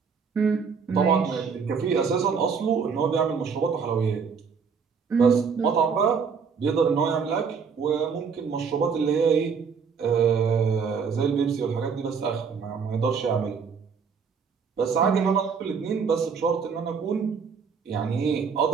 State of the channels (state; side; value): quieter; left; 6.0 dB